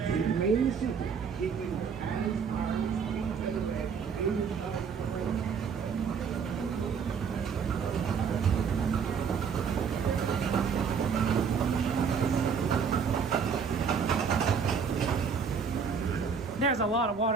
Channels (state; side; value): quieter; left; 6.3 dB